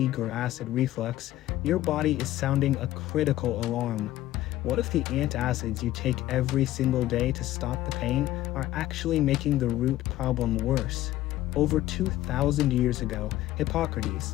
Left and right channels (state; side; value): quieter; right; 14.9 dB